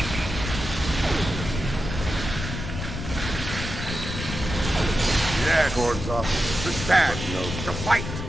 Yes, Gord's office. To stand, to fight,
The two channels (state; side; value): noise; left; rumble, 6 dB below the sound